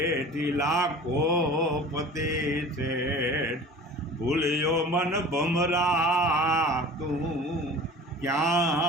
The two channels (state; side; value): normal; both; correlation 0.41